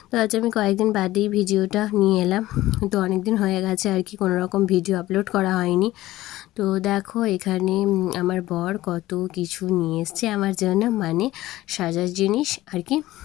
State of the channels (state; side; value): quieter; right; 16.4 dB